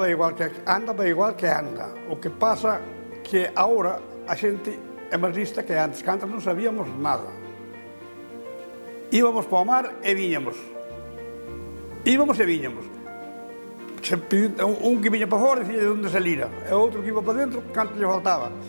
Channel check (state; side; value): inverted; both; correlation -1.00